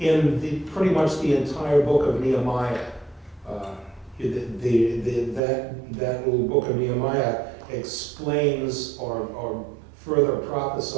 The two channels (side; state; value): left; drops out; at 5.4 s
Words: pretty much the entire book of Nehemiah. That little book of Nehemiah explains or further